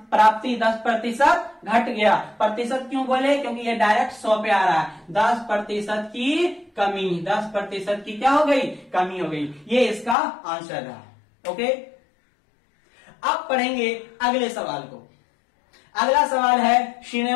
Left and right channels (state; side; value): drops out; right; at 10.2 s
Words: प्राप्ति 10% घट गया। प्रतिशत क्यों बोले, क्योंकि ये डायरेक्ट 100 पे आ रहा है। 10% की कमी, 10% की क्या हो गई, कमी हो गई। ये इसका आंसर रहा। ओके, अब पढ़ेंगे अगले सवाल को। अगला सवाल है